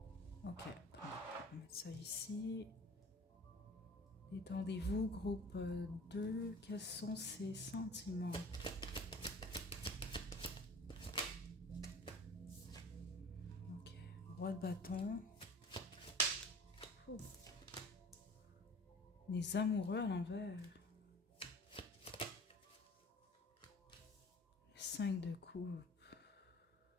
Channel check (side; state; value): both; normal; correlation 0.43